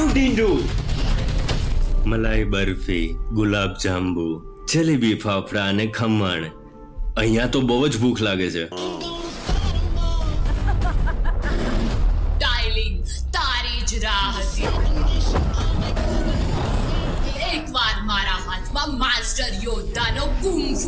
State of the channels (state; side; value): identical; both; correlation 1.00